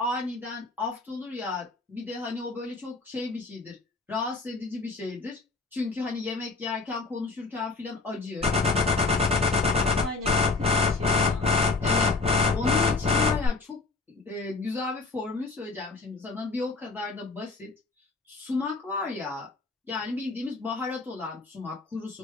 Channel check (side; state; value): right; quieter; 3.7 dB